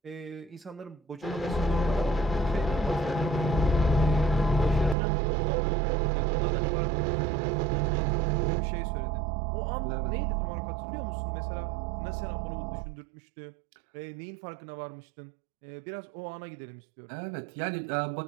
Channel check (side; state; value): left; drops out; at 5.0 s